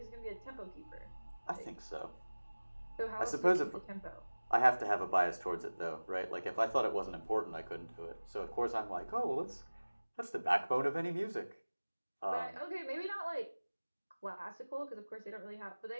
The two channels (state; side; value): inverted; both; correlation -1.00